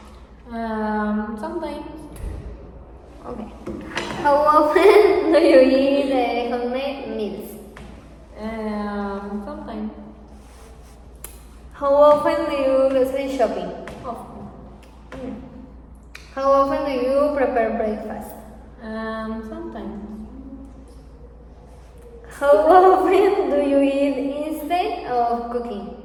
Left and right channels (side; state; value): both; identical; correlation 1.00